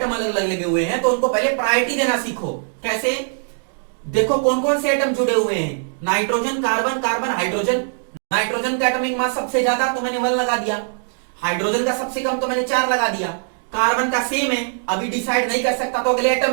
अलग अलग लगे हुए हैं तो उनको पहले प्रायोरिटी देना सीखो। कैसे? देखो कौन कौन से एटम जुड़े हुए हैं? Nitrogen, carbon, carbon, hydrogen. Nitrogen का एटॉमिक मास सबसे ज्यादा तो मैंने 1 लगा दिया। हाइड्रोजन का सबसे कम तो मैंने 4 लगा दिया। कार्बन का सेम है, अभी डिसाइड नहीं कर सकता तो अगले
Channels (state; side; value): silent; left; digital silence